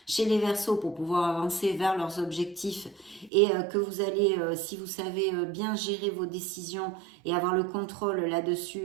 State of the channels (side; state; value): left; drops out; at 3.3 s